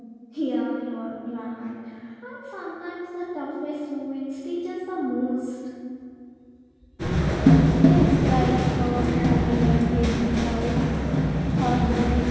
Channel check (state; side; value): identical; both; correlation 1.00